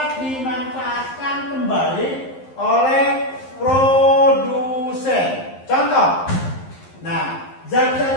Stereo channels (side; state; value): right; late; 11 ms